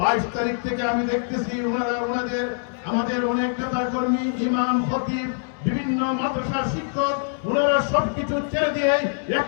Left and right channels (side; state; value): right; silent; 63 dB below the other